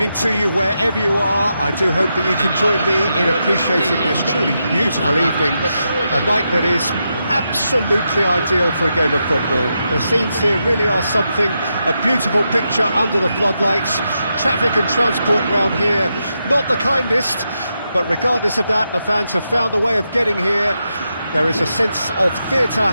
to you wherever you are. I do hope that you can join me in appreciating this truly beautiful evening, a night that is absolutely ideal for a game of football. The scenes here really are something, a beautiful picture under the floodlights. Traffic and transport round here, not the kindest, but regardless of that, the fans have found a way of getting here. There is a sense of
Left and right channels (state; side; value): inverted; both; correlation -0.85